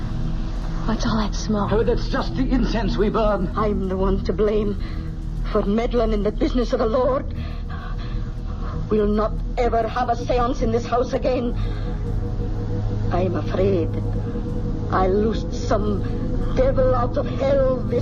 What's all that smoke? Oh, that's just the incense we burn. I'm the one to blame for meddling in the business of the Lord. We'll not ever have a seance in this house again. I'm afraid I loosed some devil out of hell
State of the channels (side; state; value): both; identical; correlation 1.00